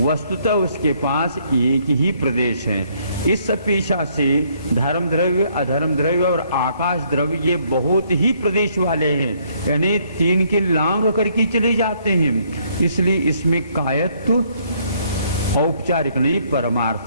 उसके पास एक ही प्रदेश है। इस अपेक्षा से धर्म द्रव्य अधर्म द्रव्य और आकाश द्रव्य ये बहुत ही प्रदेश वाले हैं, यानी 3 के लांग करके चले जाते हैं। इसलिए इसमें कायत्व औपचारिक नहीं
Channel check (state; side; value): inverted; both; correlation -0.67